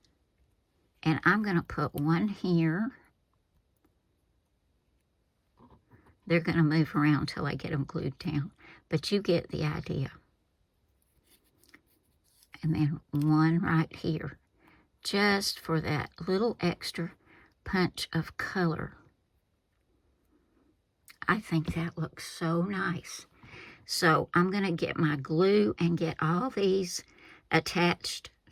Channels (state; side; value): identical; both; correlation 1.00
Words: And I'm going to put one here. They're going to move around till I get them glued down, but you get the idea. And then one right here, just for that little extra punch of color. I think that looks so nice. So I'm going to get my glue and get all these attached